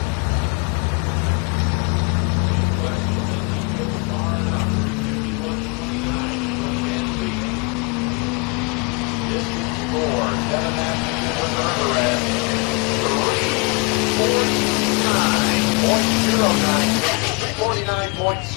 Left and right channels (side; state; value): right; quieter; 31.6 dB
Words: Big question, did he go far enough? 351.29 is what he had to beat. Distance for Kevin Masterson with the River Rat. 349.09.